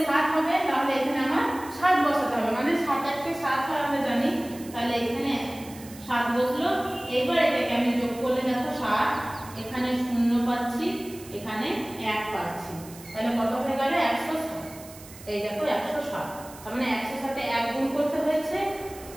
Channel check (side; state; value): right; noise; hiss, 18 dB below the sound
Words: 7 হবে, তাহলে এখানে আমার 7 বসাতে হবে, মানে 7 1 কে 7 হয় আমরা জানি, তাহলে এখানে 7 বসলো। এবার এটাকে আমি যোগ করলে দেখো 7, এখানে 0 পাচ্ছি, এখানে 1 পাচ্ছি, তাহলে কত হয়ে গেল 107। এই দেখো 107, তার মানে 100 এর সাথে 1 গুণ করতে হয়েছে,